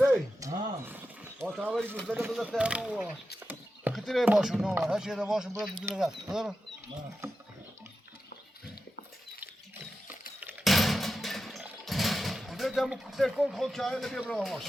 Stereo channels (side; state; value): both; normal; correlation 0.90